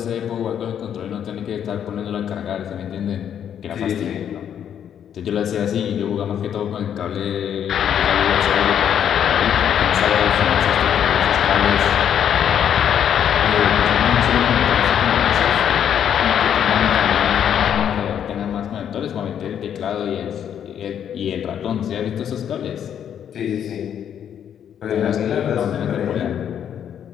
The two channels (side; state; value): right; quieter; 9.2 dB